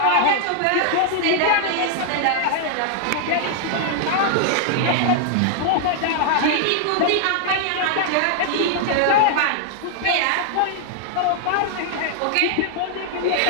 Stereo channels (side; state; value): both; different; correlation 0.00